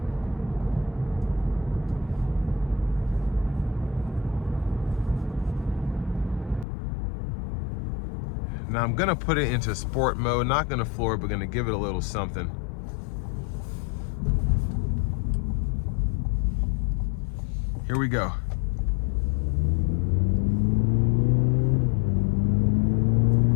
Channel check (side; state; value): right; drops out; at 6.7 s